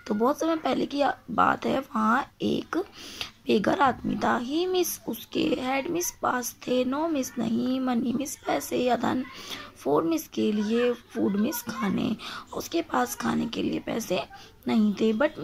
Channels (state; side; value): identical; both; correlation 1.00